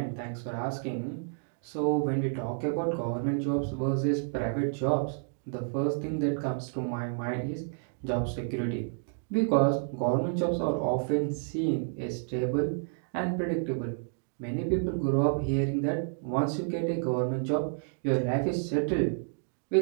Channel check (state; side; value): silent; left; digital silence